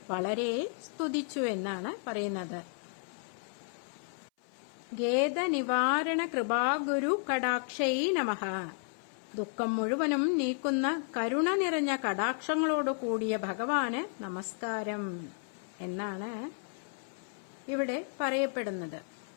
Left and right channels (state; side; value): silent; right; 56 dB below the other